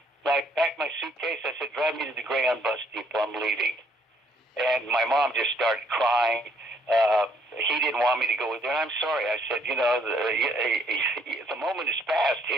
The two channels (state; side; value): normal; both; correlation 0.66